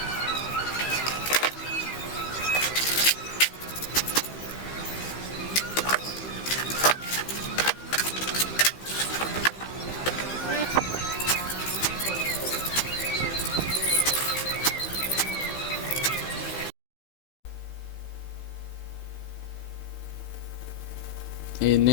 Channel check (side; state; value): right; late; 15 ms